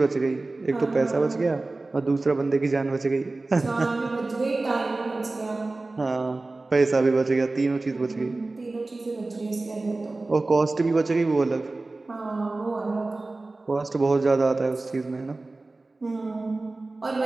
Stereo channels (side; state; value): left; quieter; 3.2 dB